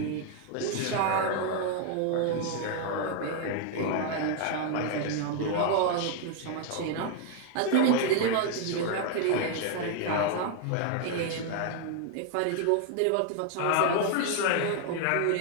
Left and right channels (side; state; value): both; different; correlation 0.00